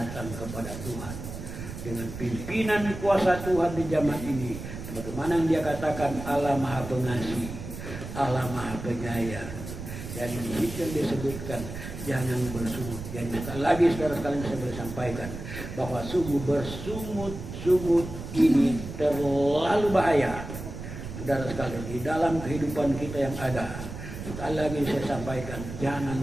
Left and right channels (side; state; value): right; noise; rumble, 9 dB below the sound